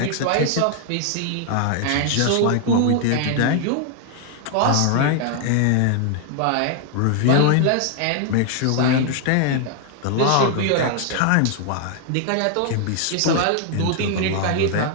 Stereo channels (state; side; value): different; both; correlation 0.00